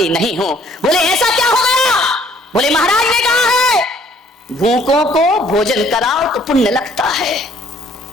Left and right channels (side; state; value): both; normal; correlation 0.60